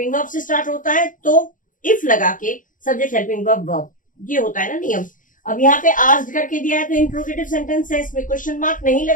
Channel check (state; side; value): late; right; 0.38 ms